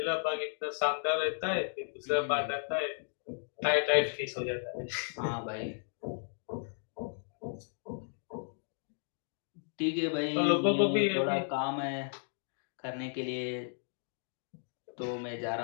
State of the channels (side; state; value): right; silent; digital silence